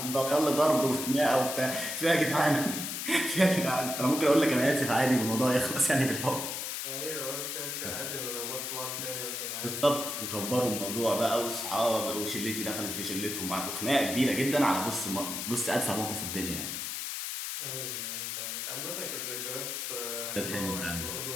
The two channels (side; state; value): left; noise; hiss, 4 dB below the sound